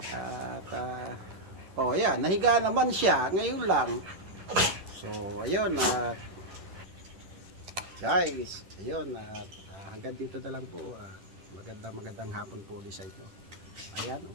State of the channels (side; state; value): left; late; 10 ms